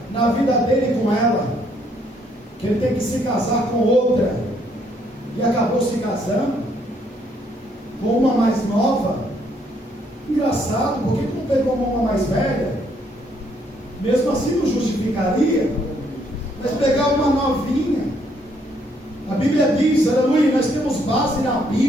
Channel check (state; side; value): normal; both; correlation 0.69